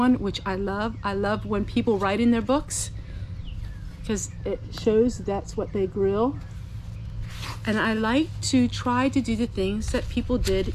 which I love. I love when people write in their books, because it shows that's what they grew. And I like to try to do the things that people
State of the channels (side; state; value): both; identical; correlation 1.00